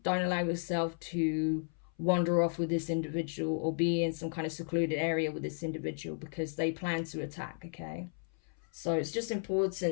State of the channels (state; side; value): silent; right; 55 dB below the other